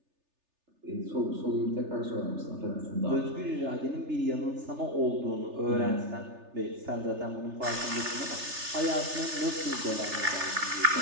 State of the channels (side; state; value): left; late; 3.3 ms